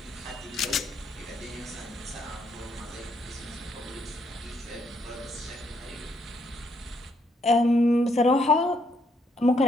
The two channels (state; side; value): normal; both; correlation 0.73